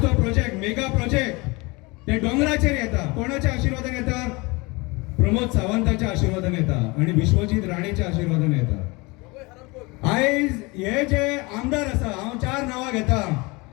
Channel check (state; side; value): quieter; right; 25.5 dB